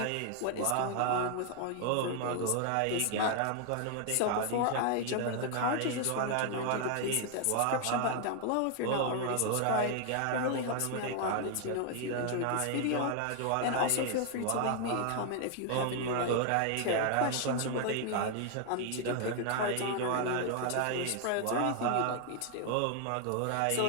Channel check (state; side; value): different; both; correlation 0.00